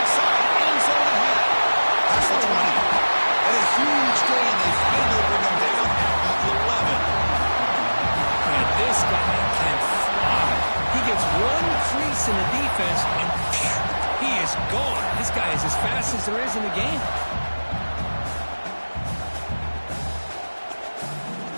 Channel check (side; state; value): both; inverted; correlation -1.00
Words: side. End zone ahead. That's the 20. And a huge gain. They finally bring him down at the 11. And this guy can fly. He gets one crease in the defense and he is gone. This guy is as fast as there is in the game.